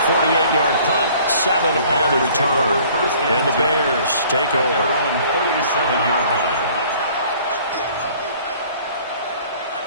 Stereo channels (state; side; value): inverted; both; correlation -0.54